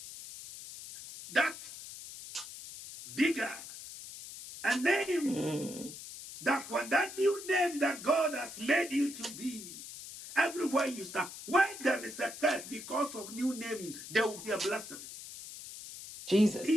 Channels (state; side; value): noise; left; hiss, 12 dB below the sound